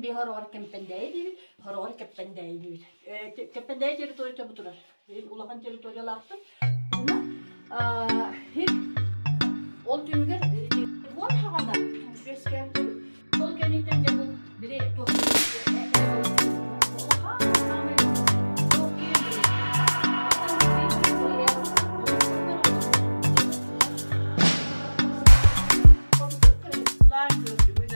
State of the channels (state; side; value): inverted; both; correlation -1.00